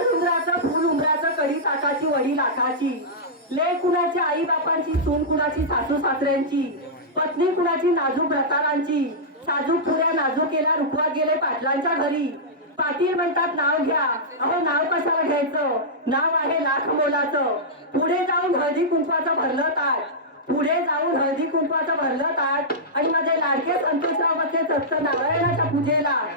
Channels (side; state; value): both; normal; correlation -0.12